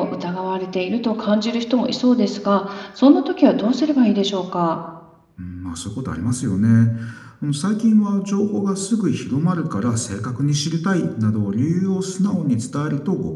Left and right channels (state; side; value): identical; both; correlation 1.00